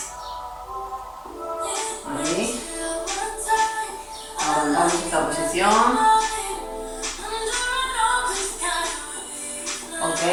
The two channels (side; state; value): both; identical; correlation 1.00